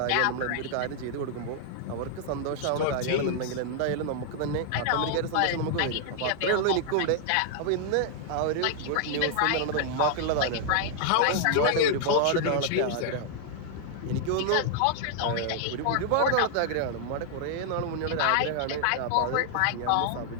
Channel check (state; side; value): different; both; correlation -0.01